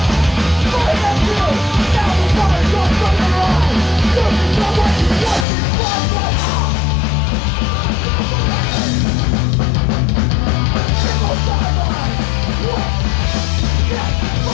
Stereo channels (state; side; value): drops out; right; at 5.5 s